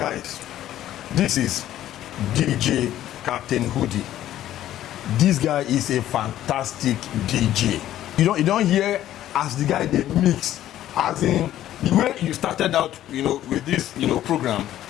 this is DJ Captain Hoodie. This guy is a fantastic DJ. You don't hear as the guy they mix, as in the way you started out, with this, program,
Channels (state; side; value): quieter; right; 12.7 dB